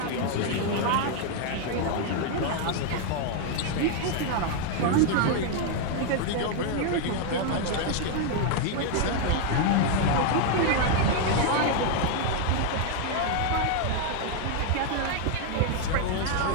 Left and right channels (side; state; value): both; different; correlation 0.00